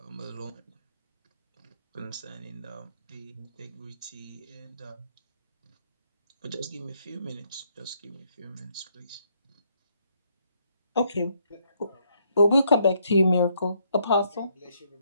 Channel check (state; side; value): inverted; both; correlation -0.72